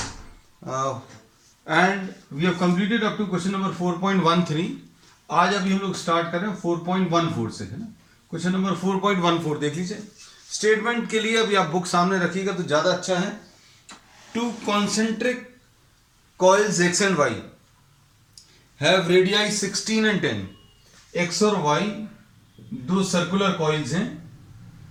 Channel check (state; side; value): identical; both; correlation 1.00